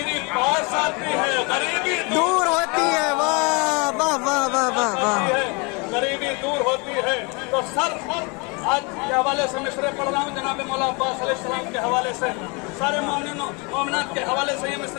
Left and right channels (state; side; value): quieter; right; 30.4 dB